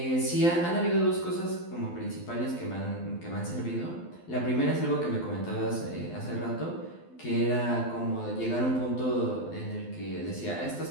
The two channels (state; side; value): late; right; 12 ms